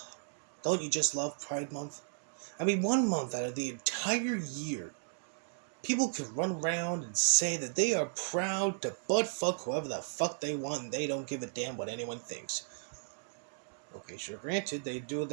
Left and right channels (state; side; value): silent; left; digital silence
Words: Don't you just love Pride Month? I mean, 1 month out of the entire year, people can run around and say that they are proud to butt fuck whoever the fuck they want and they don't give a damn what anyone thinks. Okay, sure, granted, they do